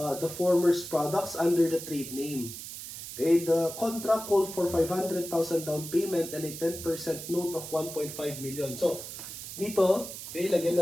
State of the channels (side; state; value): right; noise; hiss, 10 dB below the sound